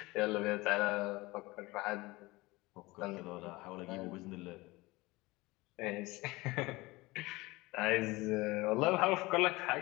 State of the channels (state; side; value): quieter; right; 21.6 dB